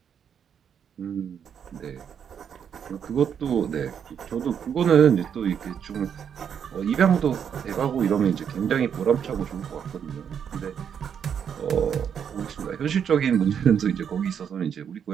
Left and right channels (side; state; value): left; quieter; 7.9 dB